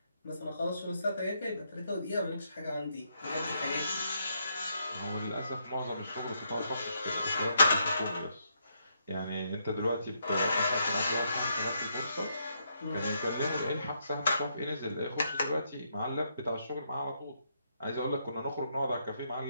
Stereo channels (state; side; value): inverted; both; correlation -0.77